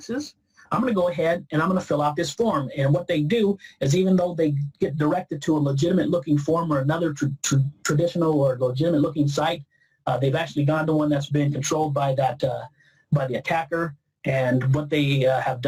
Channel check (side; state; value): both; identical; correlation 1.00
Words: I'm going to go ahead and I'm going to fill out this form. And what they do is, even though they get directed to a legitimate looking form or another traditional or legitimate looking site, they've actually gone to one that's been controlled by by the attacker. And what they have